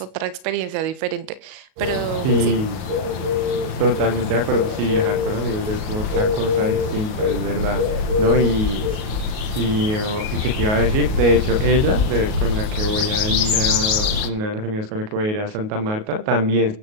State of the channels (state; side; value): late; left; 38 ms